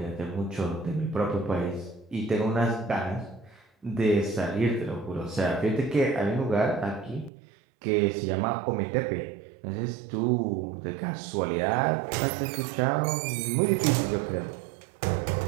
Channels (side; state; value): left; drops out; at 7.3 s